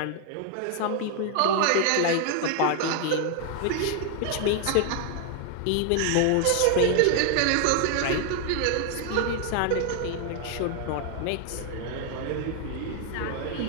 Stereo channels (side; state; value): both; different; correlation 0.00